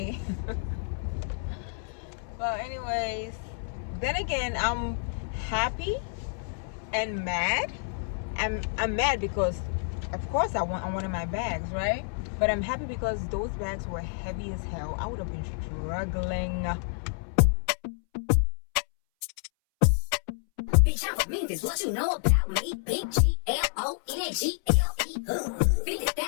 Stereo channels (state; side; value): silent; right; 58 dB below the other